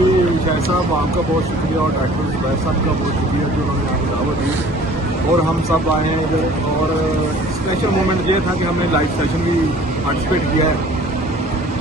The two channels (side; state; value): both; normal; correlation 0.50